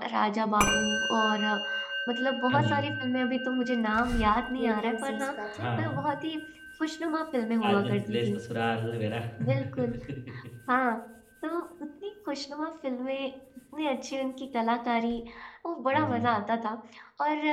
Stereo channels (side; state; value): both; identical; correlation 1.00